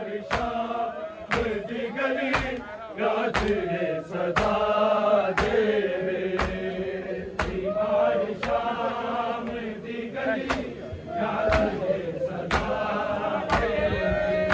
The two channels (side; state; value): both; identical; correlation 1.00